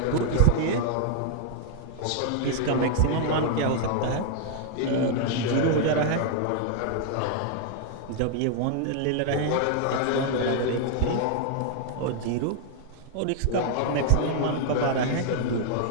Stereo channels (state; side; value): different; both; correlation 0.00